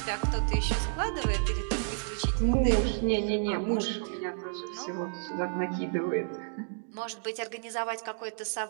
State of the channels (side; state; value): left; silent; digital silence